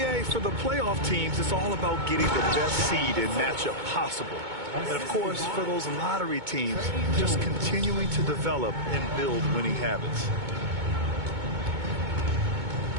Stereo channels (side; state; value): left; late; 2.2 ms